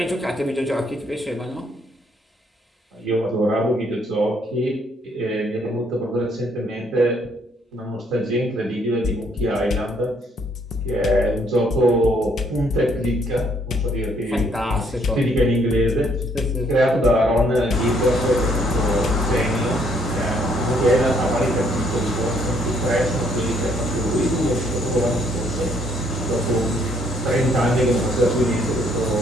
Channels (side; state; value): both; normal; correlation 0.68